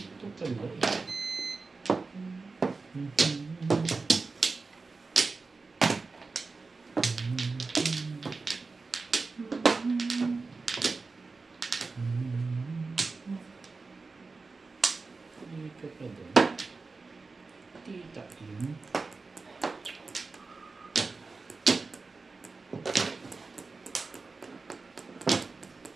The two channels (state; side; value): quieter; left; 4.0 dB